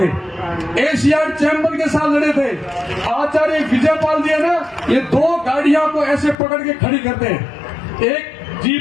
एशियाड चैंपियन के साथ लड़े थे। आचार्य विजयपाल जी है ना, ये 2 गाड़ियों को ऐसे पकड़ के खड़ी करते हैं, एक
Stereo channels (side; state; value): right; drops out; at 6.4 s